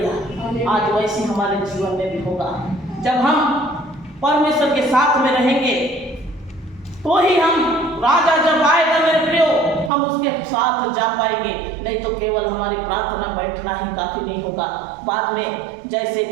आज वैसे हमारे जीवन में भी होगा। जब हम परमेश्वर के साथ में रहेंगे तो ही हम, राजा जब आएगा मेरे प्रियो, हम उसके साथ जा पाएंगे। नहीं तो केवल हमारी प्रार्थना बैठना ही काफी नहीं होगा। बाद में जैसे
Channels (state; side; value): drops out; left; at 9.9 s